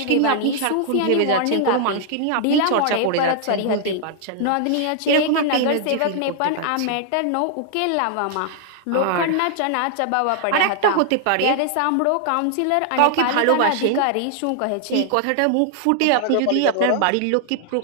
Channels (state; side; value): different; both; correlation -0.01